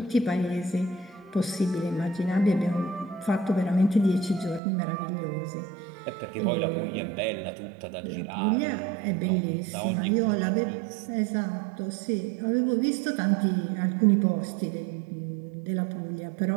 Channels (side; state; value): left; drops out; at 4.6 s